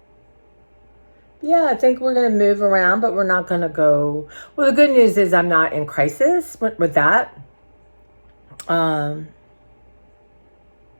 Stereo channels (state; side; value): inverted; both; correlation -1.00